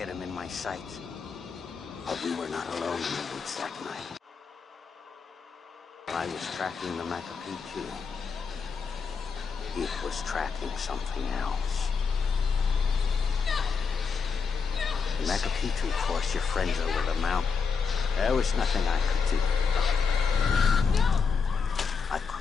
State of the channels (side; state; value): right; quieter; 5.5 dB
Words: him in my sights. But we were not alone in the woods that night. I was tracking the Machu Picchu. It was tracking something else. The Machu Picchu forced your friends over the mountain. There was nothing I could do. I